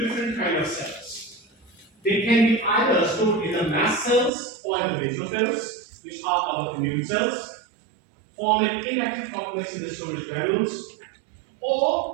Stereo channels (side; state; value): left; drops out; at 4.3 s